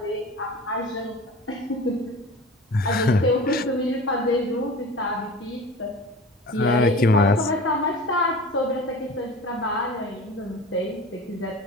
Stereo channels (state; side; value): normal; both; correlation 0.37